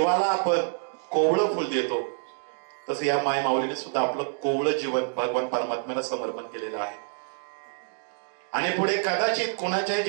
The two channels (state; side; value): silent; left; digital silence